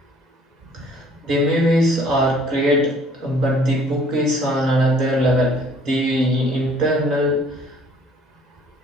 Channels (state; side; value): normal; both; correlation 0.57